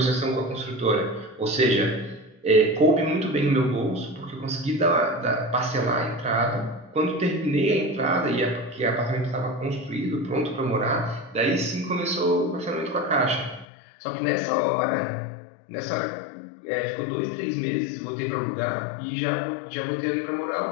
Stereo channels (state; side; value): drops out; right; at 13.7 s